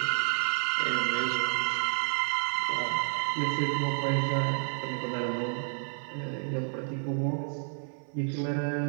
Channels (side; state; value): left; silent; digital silence